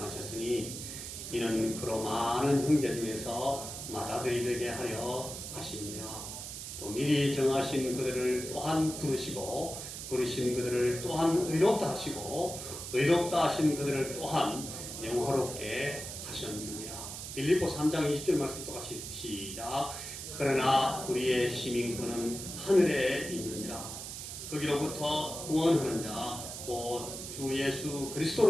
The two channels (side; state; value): right; noise; hiss, 8 dB below the sound